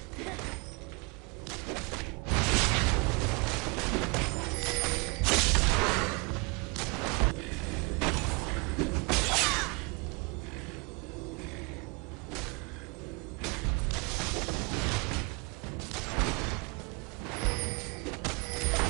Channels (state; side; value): quieter; left; 30.2 dB